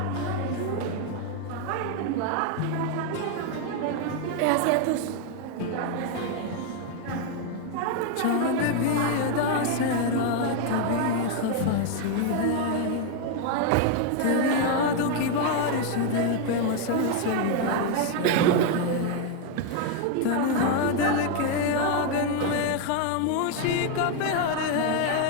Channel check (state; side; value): different; both; correlation 0.01